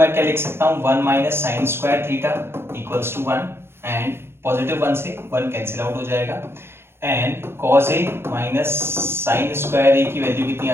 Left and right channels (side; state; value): left; late; 0.12 ms